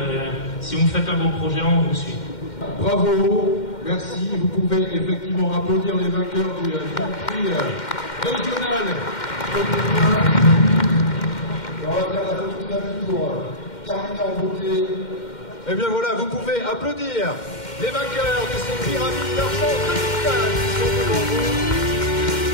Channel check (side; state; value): right; late; 2.1 ms